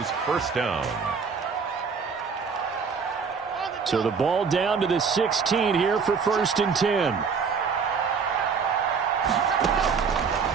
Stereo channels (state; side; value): quieter; left; 5.7 dB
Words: first down. So the ball down to the 16 here for 1st and 10.